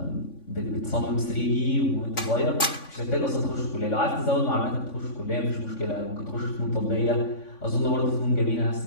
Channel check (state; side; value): late; right; 3.5 ms